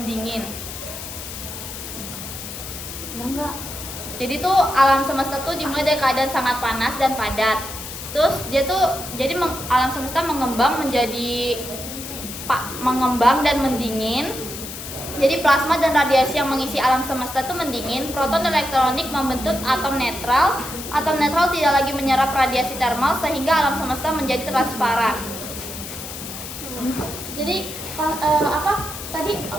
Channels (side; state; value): left; noise; hiss, 10 dB below the sound